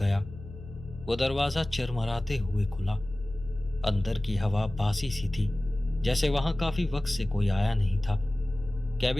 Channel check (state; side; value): noise; left; hum, 14 dB below the sound